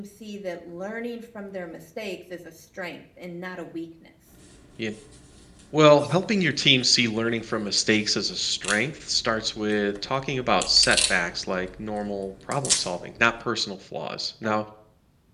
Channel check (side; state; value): both; identical; correlation 1.00